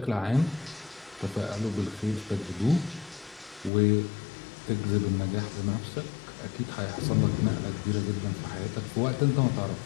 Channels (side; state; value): right; drops out; at 3.7 s